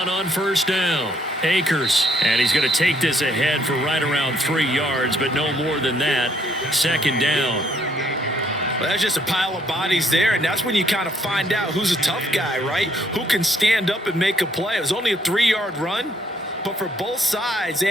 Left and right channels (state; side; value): normal; both; correlation 0.68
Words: on first down. Akers, and he's going to take this ahead for right around 3 yards, but no more than that. Second down. Well, that's just a pile of bodies there, and that's when you kind of find out who's a tough guy, right? Who can stand up and make a play. It was only a 3-yard run, but for both sides, they